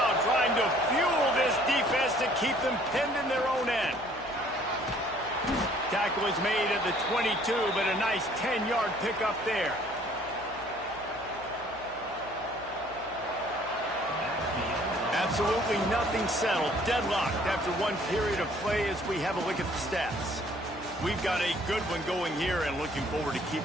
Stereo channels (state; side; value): noise; left; hum, 22 dB below the sound